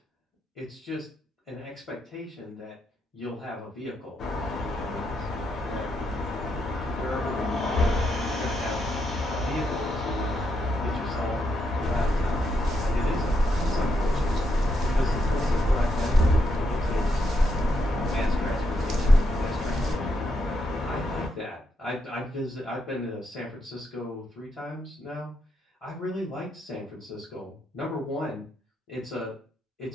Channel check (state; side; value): normal; both; correlation 0.80